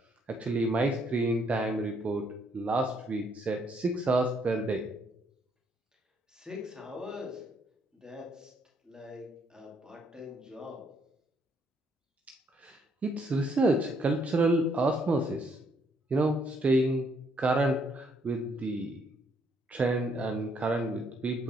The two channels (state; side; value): normal; both; correlation 0.70